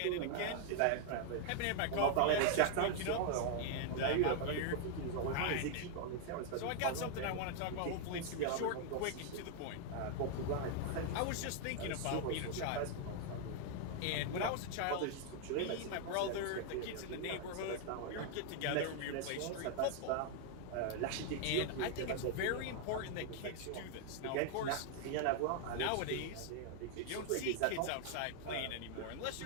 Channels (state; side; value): different; both; correlation 0.00